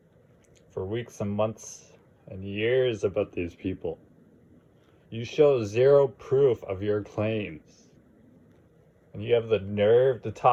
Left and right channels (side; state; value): both; identical; correlation 1.00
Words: for weeks and months and years about these people, you show zero proof of your claims. And you have the nerve to